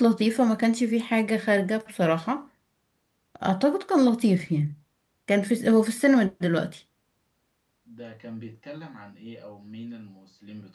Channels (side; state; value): both; identical; correlation 1.00